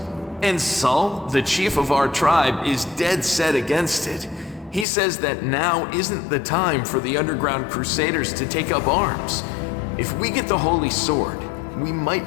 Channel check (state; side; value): drops out; right; at 4.9 s